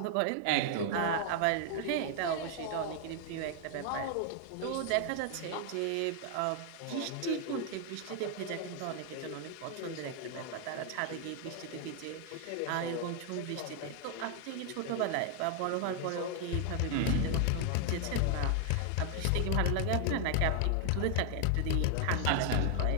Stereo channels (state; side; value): different; both; correlation 0.00